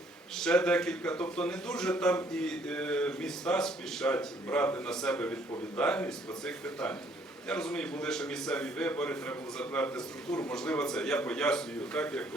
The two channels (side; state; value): both; normal; correlation 0.64